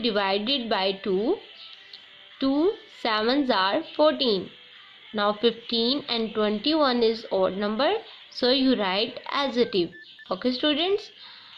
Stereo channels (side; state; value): both; identical; correlation 1.00